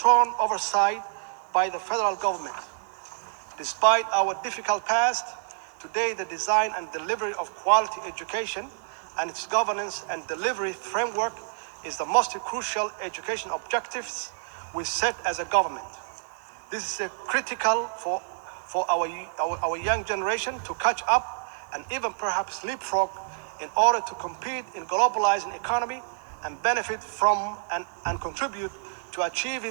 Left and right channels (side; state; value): left; silent; digital silence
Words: oversight by the federal government. Despite our difficult past, today the design and delivery of quality education and its governance and delivery framework is the most crucial education objectives we set as a government. This is critical for our young generation to catch up and even perhaps leapfrog in order to compete in globalizing economy and benefit from and contribute to